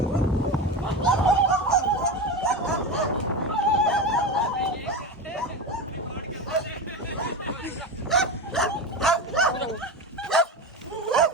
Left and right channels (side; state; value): both; normal; correlation 0.22